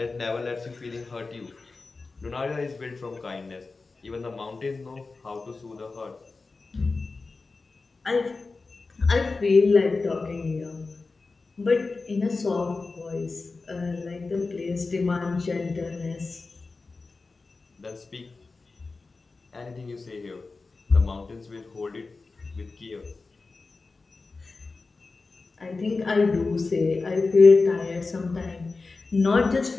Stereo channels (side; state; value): right; quieter; 3.9 dB